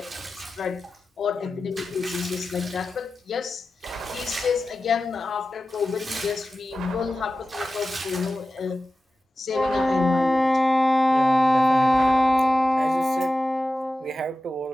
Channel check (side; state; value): both; normal; correlation 0.94